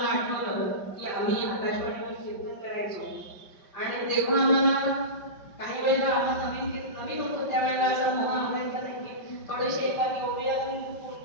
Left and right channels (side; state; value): right; late; 5.2 ms